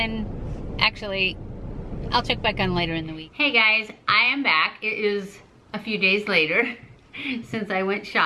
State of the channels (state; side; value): identical; both; correlation 1.00